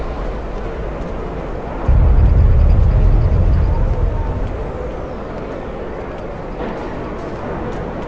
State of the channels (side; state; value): both; identical; correlation 1.00